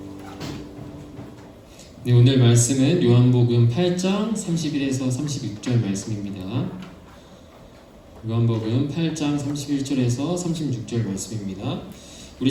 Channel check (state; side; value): identical; both; correlation 1.00